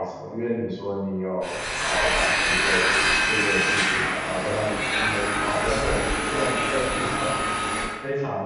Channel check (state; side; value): identical; both; correlation 1.00